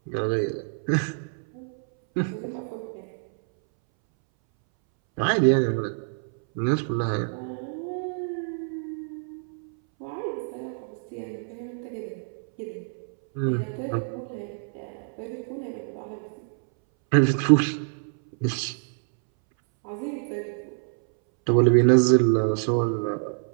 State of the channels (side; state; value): left; silent; 61 dB below the other